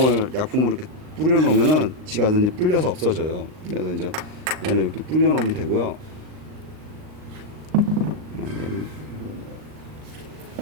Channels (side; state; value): left; late; 39 ms